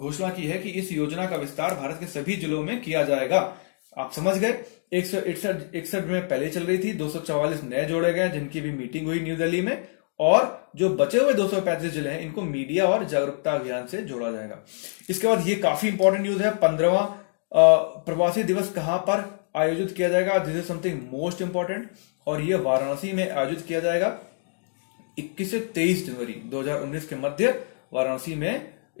की है कि इस योजना का विस्तार भारत के सभी जिलों में किया जाएगा। आप समझ गए, 161 में पहले चल रही थी, 244 नए जोड़े गए जिनकी भी मीटिंग हुई न्यू दिल्ली में, और जो बचे हुए 235 जिले हैं इनको मीडिया और जागरूकता अभियान से जोड़ा जाएगा। इसके बाद ये काफी इंपॉर्टेंट न्यूज है, 15वां प्रवासी दिवस कहां पर आयोजित किया जाएगा? This is something most important, और ये वाराणसी में आयोजित किया जाएगा 21 से 23 जनवरी 2019 के मध्य वाराणसी में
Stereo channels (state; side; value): silent; right; digital silence